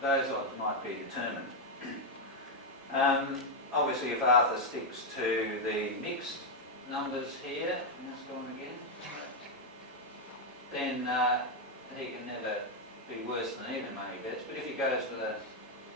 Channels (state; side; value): normal; both; correlation 0.01